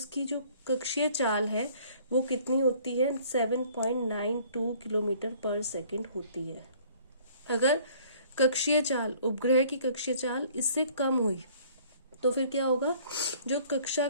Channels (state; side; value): inverted; both; correlation -0.55